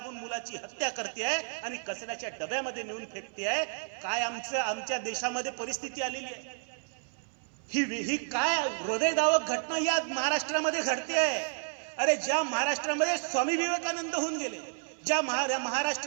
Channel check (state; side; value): silent; left; 57 dB below the other